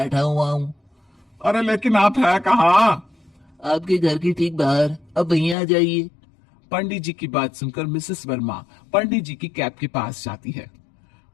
हुआ हूँ। अरे लेकिन आप है कहाँ। आपके घर के ठीक बाहर, अब वहीं आ जाइए। पंडित जी की बात सुनकर मिसेस वर्मा पंडित जी की कैब के पास जाती है।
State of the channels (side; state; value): right; drops out; at 5.6 s